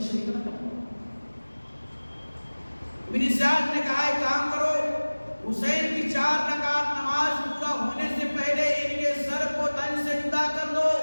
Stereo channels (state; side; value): inverted; both; correlation -1.00